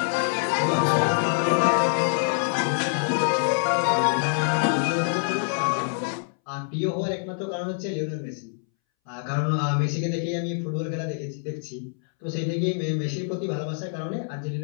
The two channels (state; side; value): silent; right; 61 dB below the other